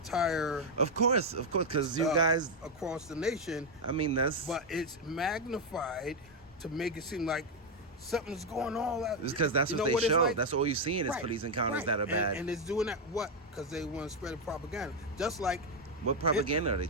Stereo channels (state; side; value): normal; both; correlation 0.03